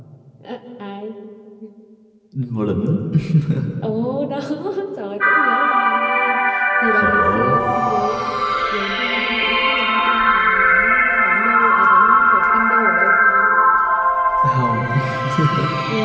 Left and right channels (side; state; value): both; identical; correlation 1.00